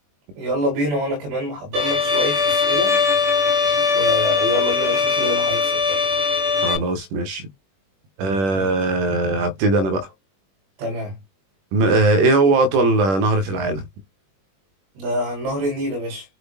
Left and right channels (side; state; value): left; late; 21 ms